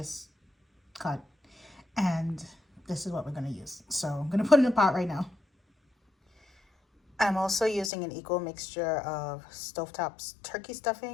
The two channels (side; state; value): right; drops out; at 7.9 s